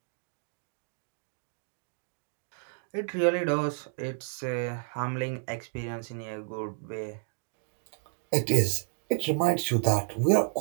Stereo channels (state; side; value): silent; left; 57 dB below the other